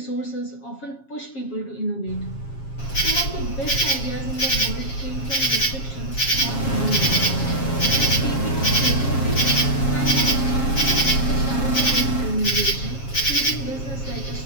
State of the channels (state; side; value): late; right; 7.4 ms